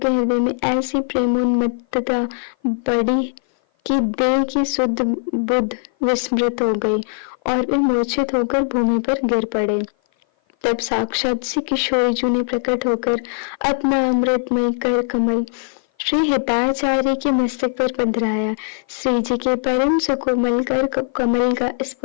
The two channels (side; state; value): right; silent; 56 dB below the other